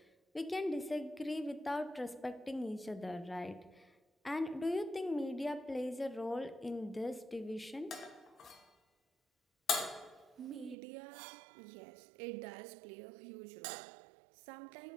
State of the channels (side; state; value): left; drops out; at 10.8 s